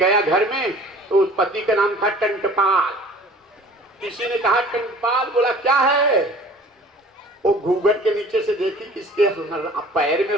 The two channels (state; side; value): normal; both; correlation 0.48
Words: घर में, तो उस पति का नाम था टंटपाल। किसी ने कहा टंटपाल, बोला क्या है? वो घूंघट के नीचे से देखी, किसके पैर में